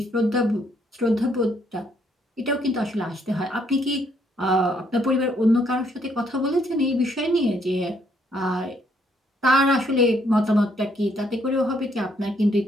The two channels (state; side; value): normal; both; correlation 0.70